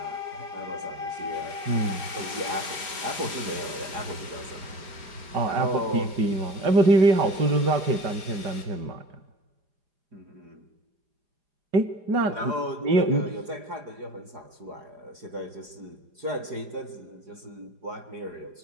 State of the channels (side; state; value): left; late; 4.9 ms